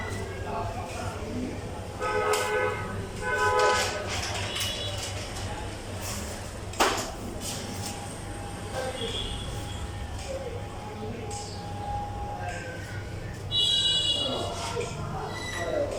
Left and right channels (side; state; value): both; identical; correlation 1.00